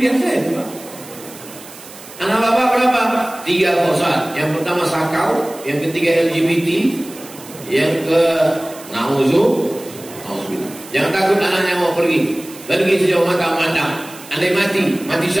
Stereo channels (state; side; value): noise; right; hiss, 18 dB below the sound